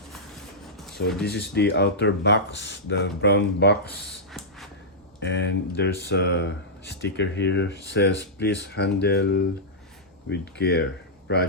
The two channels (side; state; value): both; normal; correlation -0.11